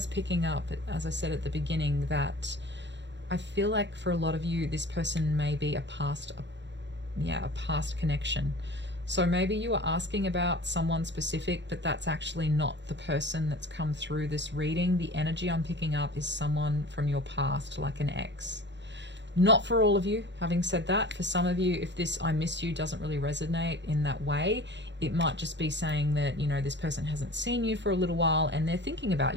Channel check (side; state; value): left; late; 0.52 ms